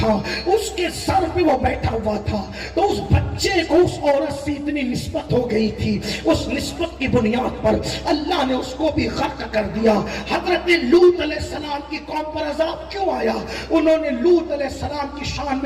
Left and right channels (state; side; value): identical; both; correlation 1.00